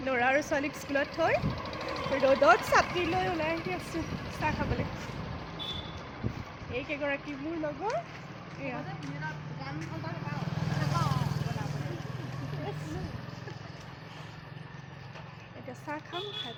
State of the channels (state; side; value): identical; both; correlation 1.00